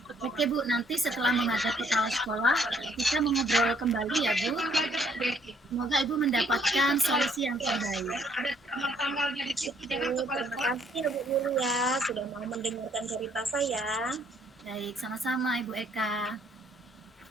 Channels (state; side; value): normal; both; correlation 0.66